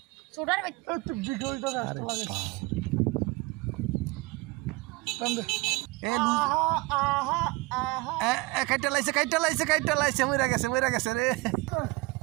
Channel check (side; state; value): left; quieter; 23.3 dB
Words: সোডার তুই বিগলটা রাস্তা লাগাইছ তন্দে এ লুজ এ কাইটা লাইছে মইরা গেছে রে।